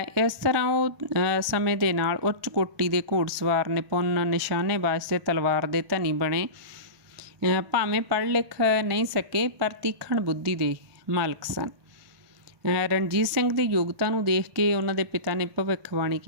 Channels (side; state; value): left; late; 1.4 ms